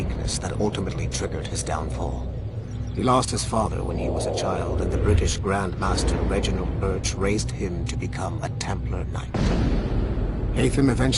that ultimately triggered his downfall. He lost his father when he was a child, and the British Grand Master Reginald Birch raised him to become a Templar Knight. Haytham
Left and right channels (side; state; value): both; identical; correlation 1.00